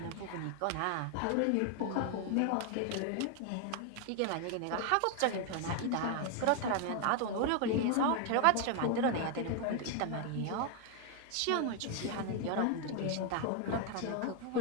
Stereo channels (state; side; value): different; both; correlation 0.01